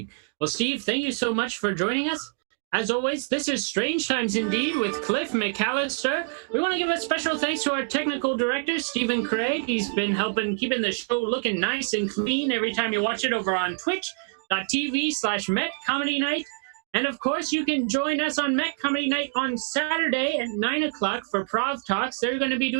Well, Steve, thank you so much for joining us. As always, this is Strange Times Indeed with Cliff McCallister. We want to give a special thanks to our technical director, Stephen Craig. He's been helping keeping the show looking nice and clean every time you watch it over on twitch.tv/Met Comedy Night. And of course, you can join us on Met Comedy Night on Saturday at 9 o'clock for Prov Talks. They're going to be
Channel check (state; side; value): quieter; left; 38.8 dB